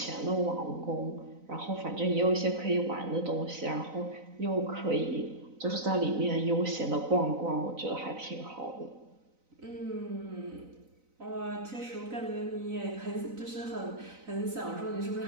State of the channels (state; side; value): late; left; 4.0 ms